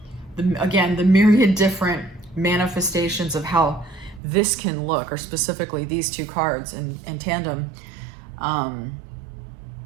again, the myriad different manifestations of how this can look, or specifically these two cards in tandem,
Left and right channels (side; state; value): left; drops out; at 4.2 s